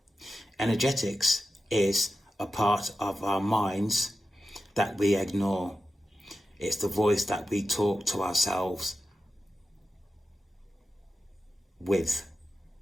Energetics is a part of our minds that we ignore. It's the voice that we talk to ourselves with.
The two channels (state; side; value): normal; both; correlation 0.91